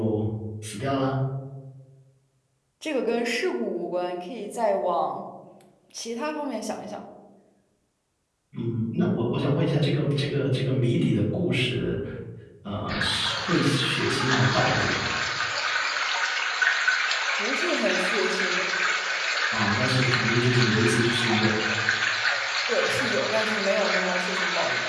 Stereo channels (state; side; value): identical; both; correlation 1.00